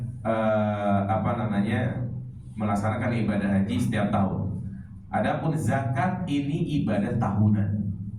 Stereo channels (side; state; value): both; identical; correlation 1.00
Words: melaksanakan ibadah haji setiap tahun. Adapun zakat ini ibadah tahunan.